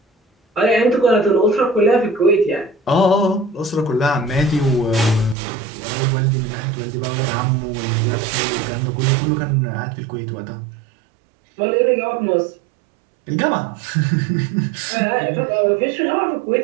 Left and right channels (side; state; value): left; drops out; at 5.4 s